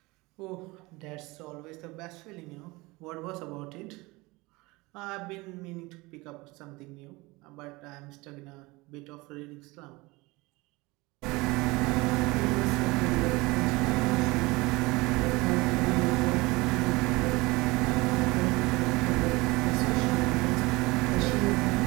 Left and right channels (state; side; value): quieter; left; 22.9 dB